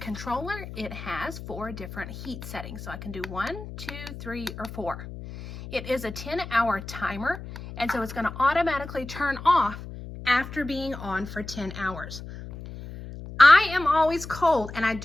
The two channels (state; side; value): noise; left; hum, 11 dB below the sound